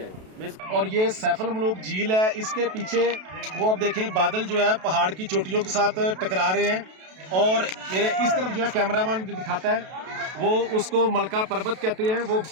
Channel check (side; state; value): left; late; 32 ms